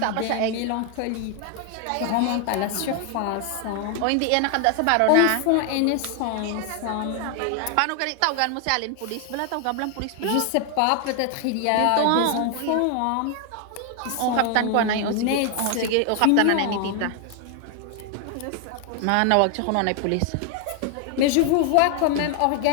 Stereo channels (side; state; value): both; different; correlation 0.00